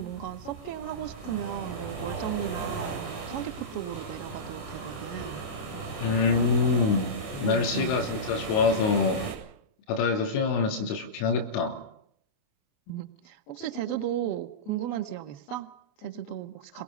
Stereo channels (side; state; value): right; late; 28 ms